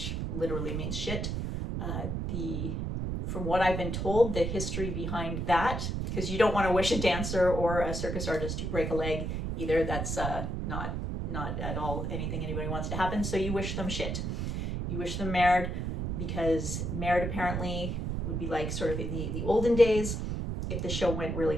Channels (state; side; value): noise; right; rumble, 2 dB below the sound